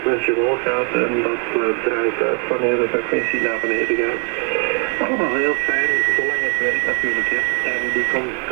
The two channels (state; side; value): quieter; left; 38.8 dB